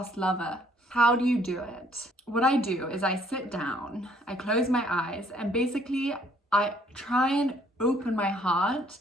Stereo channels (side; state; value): both; normal; correlation 0.63